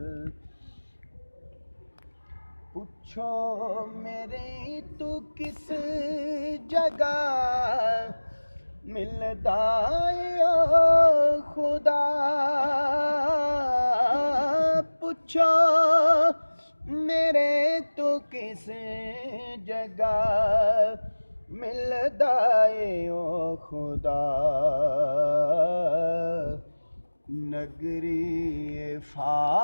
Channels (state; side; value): inverted; both; correlation -1.00